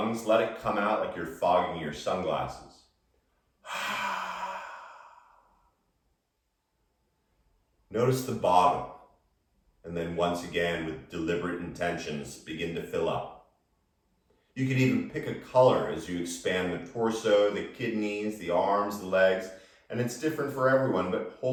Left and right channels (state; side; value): identical; both; correlation 1.00